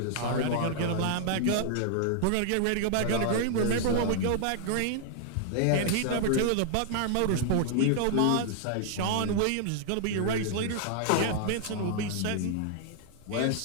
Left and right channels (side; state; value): both; different; correlation -0.01